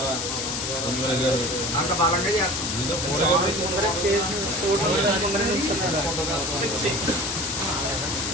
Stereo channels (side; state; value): left; noise; hiss, 2 dB below the sound